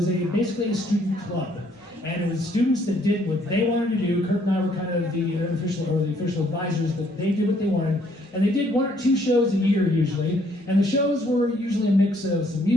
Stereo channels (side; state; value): both; normal; correlation 0.66